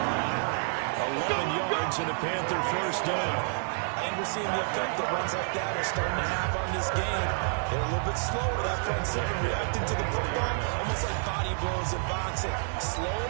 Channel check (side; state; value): left; silent; 59 dB below the other